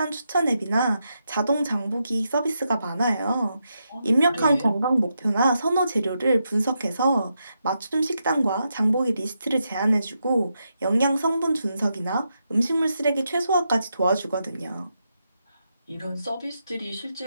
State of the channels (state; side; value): inverted; both; correlation -0.84